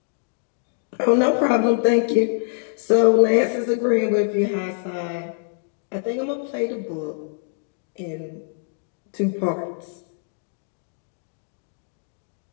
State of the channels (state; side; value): silent; right; digital silence